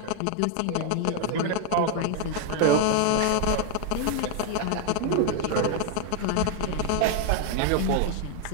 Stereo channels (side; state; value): both; different; correlation 0.00